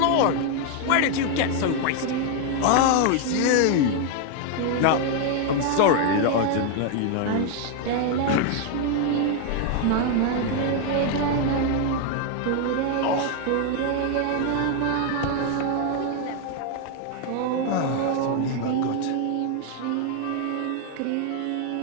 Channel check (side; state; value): both; different; correlation 0.00